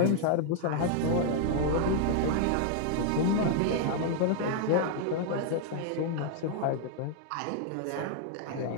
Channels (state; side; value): different; both; correlation -0.01